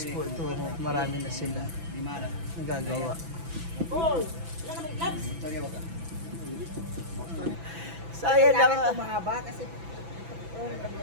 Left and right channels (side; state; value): left; late; 6.0 ms